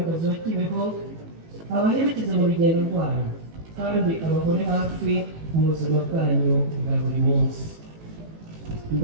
wa Kibeho abaherekeza mu rugendo rwanyu kandi abahore hafi mu buzima bwanyu bwa buri munsi.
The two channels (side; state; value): left; late; 18 ms